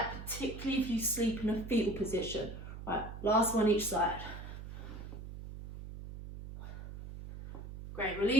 particularly if you sleep in a fetal position. Right, last one each side. Great,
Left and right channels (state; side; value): noise; right; hum, 10 dB below the sound